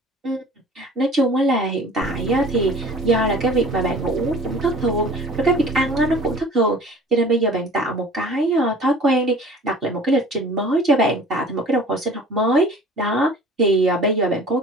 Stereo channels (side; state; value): both; normal; correlation 0.46